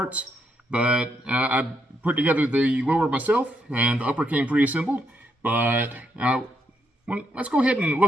but I put together the lower myself and the upper came pre-assembled. But let's go ahead and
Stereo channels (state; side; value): normal; both; correlation 0.79